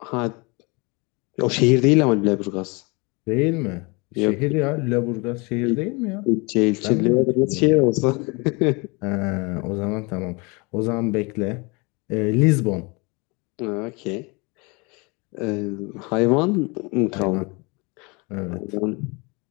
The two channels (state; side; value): quieter; right; 28.6 dB